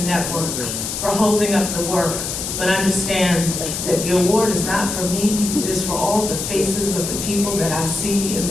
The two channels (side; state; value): left; noise; hiss, 4 dB below the sound